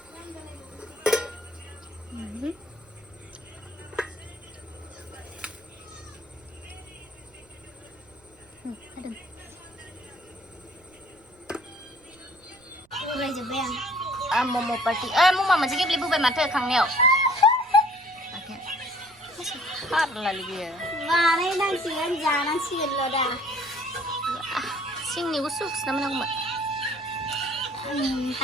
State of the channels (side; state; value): right; noise; rumble, 30 dB below the sound